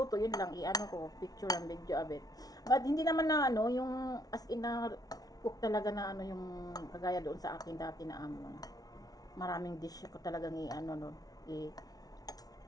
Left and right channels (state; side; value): late; right; 0.18 ms